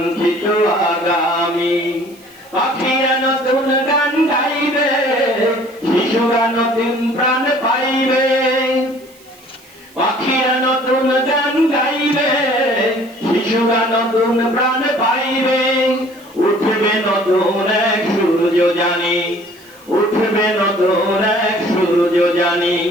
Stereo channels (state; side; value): noise; right; hiss, 26 dB below the sound